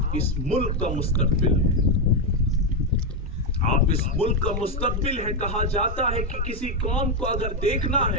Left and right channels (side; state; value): both; normal; correlation 0.05